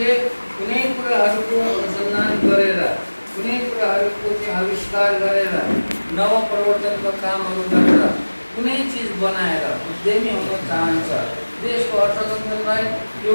कुनै कुराहरूको अनुसन्धान गरेर, कुनै कुराहरूको चाहिँ आविष्कार गरेर, नवप्रवर्तनको कामहरू गरेर कुनै चिज बनाएर उद्यमी हुन चाहन्छ, देशको अर्थतन्त्रलाई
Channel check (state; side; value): inverted; both; correlation -1.00